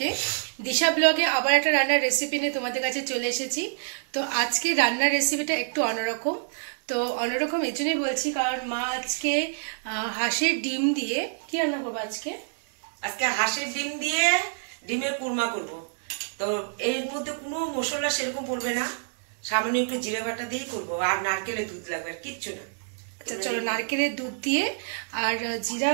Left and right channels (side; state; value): left; silent; digital silence